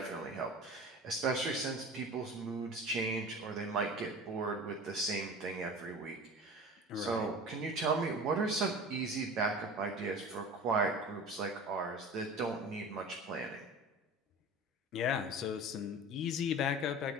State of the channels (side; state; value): both; normal; correlation 0.36